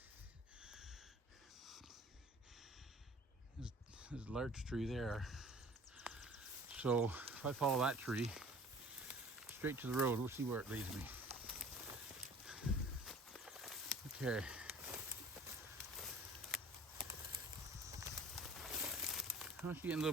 There's a large tree there. So if I follow that tree straight to the road, we'll see where it leads me. Okay. Oh, it's getting a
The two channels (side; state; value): both; normal; correlation 0.47